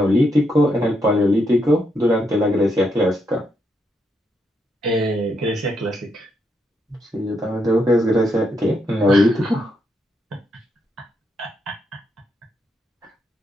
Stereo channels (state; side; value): normal; both; correlation 0.79